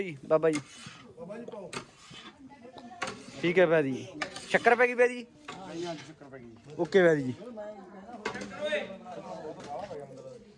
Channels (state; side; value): identical; both; correlation 1.00